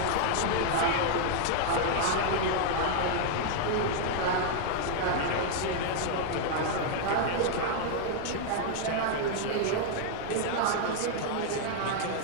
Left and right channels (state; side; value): different; both; correlation 0.00